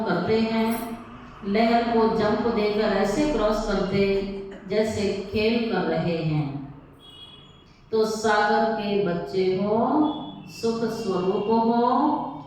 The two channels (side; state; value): both; identical; correlation 1.00